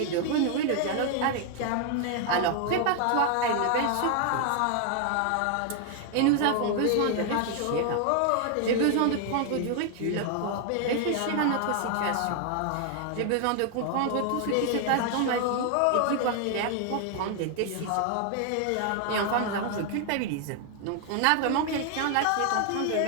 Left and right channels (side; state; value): both; different; correlation 0.00